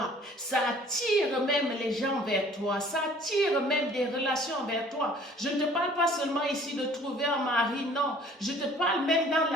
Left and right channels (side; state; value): both; normal; correlation 0.53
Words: ça attire même les gens vers toi, ça attire même des relations vers toi. Je ne te parle pas seulement ici de trouver un mari, non. Je te parle même dans